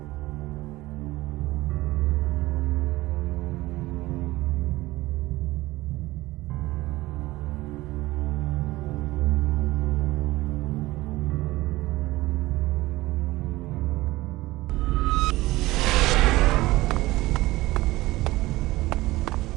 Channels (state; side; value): quieter; left; 18.7 dB